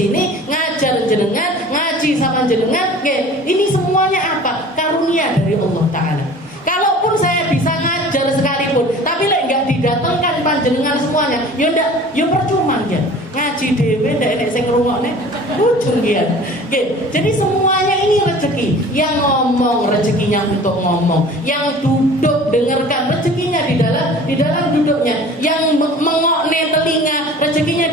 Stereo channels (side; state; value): both; normal; correlation 0.44